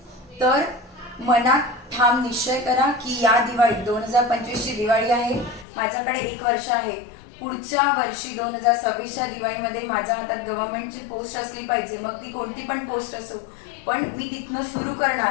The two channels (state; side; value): drops out; right; at 5.7 s